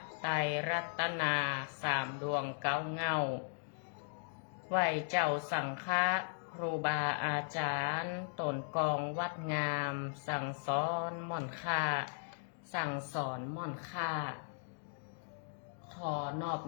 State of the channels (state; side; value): silent; right; digital silence